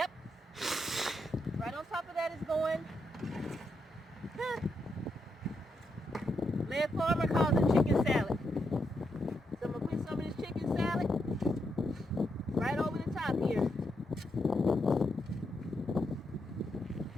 Right on top of that is going. Lead Farmer calls it chicken salad. So I'm gonna put some of this chicken salad right over the top here.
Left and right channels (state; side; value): normal; both; correlation 0.82